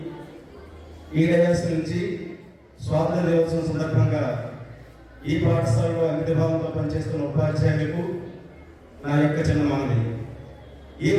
ఈ డయాస్ నుంచి స్వాతంత్ర దినోత్సవం సందర్భంగా ఈ పాఠశాలలో అంకితభావంతో పనిచేస్తున్న ఉపాధ్యాయులకు నా యొక్క చిన్న మనవి.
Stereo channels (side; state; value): both; identical; correlation 1.00